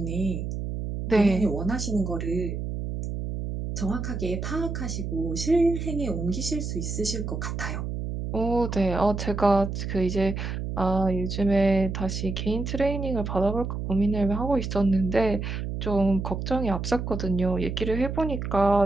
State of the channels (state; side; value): noise; right; hum, 4 dB below the sound